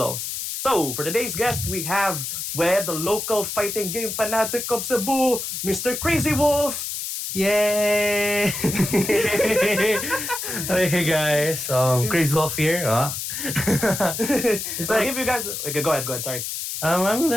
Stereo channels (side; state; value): left; noise; hiss, 5 dB below the sound